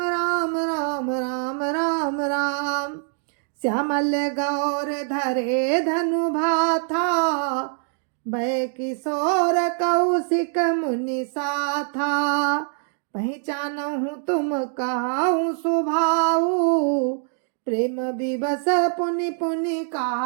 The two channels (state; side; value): silent; left; 62 dB below the other